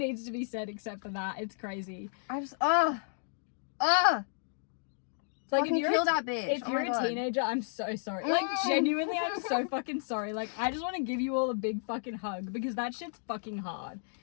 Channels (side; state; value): right; silent; digital silence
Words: to be said except for that. It's crazy. I just, Like, fucking kill that bitch. If you're a teenager, I'm so sorry. Like, genuinely, I'm so fucking sorry. Like, I just want to give you all a big fucking hug, because that shit's fucking hard.